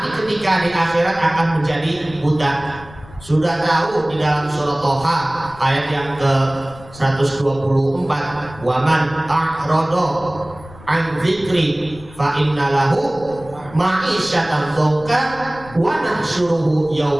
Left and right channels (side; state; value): left; noise; rumble, 19 dB below the sound